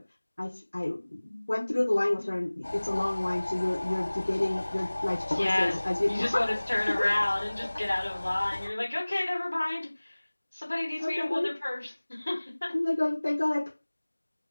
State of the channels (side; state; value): both; inverted; correlation -1.00